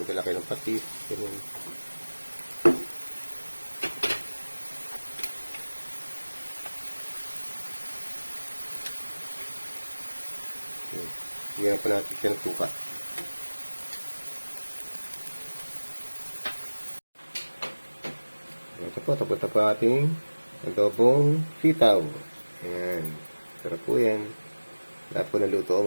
nila kayo ng patis. Ganun. Higyan pa natin siya ng suka. Ito po, tapos na po ating adobong sitaw. Ayan. Sarap po yan. Lahat po naluto,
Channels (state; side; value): inverted; both; correlation -1.00